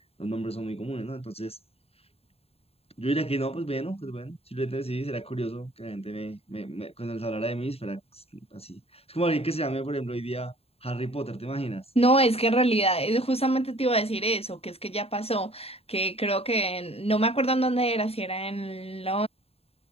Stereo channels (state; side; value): late; right; 0.29 ms